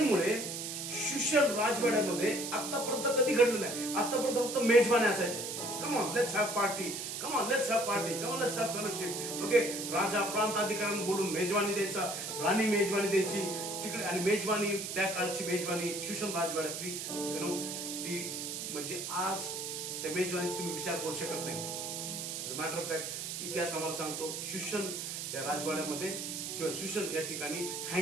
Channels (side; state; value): right; noise; hiss, 5 dB below the sound